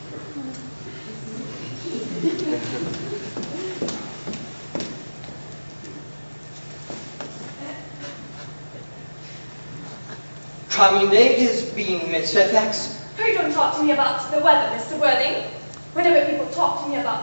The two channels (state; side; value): inverted; both; correlation -1.00